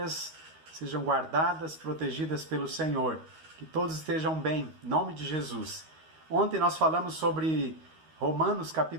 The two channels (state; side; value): late; left; 13 ms